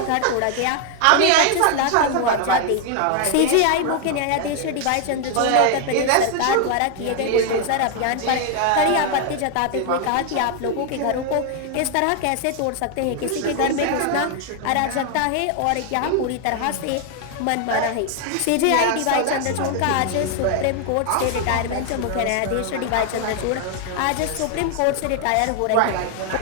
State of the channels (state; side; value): different; both; correlation 0.00